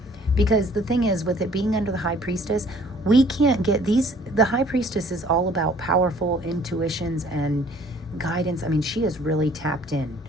Because the thing is, with it being under the High Priestess, we can't get the High Priestess is all about powerful intuitions and guidance. I mean, she is really tapped in.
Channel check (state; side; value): normal; both; correlation 0.56